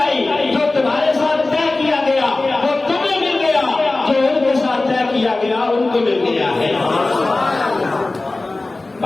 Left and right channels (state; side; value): quieter; right; 3.2 dB